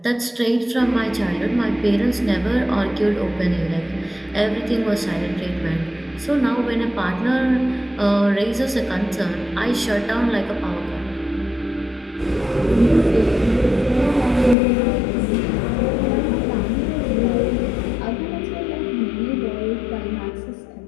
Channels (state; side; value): drops out; right; at 14.6 s